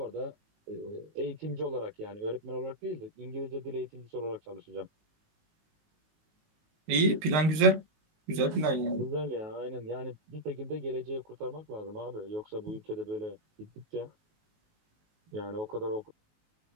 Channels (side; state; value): left; late; 19 ms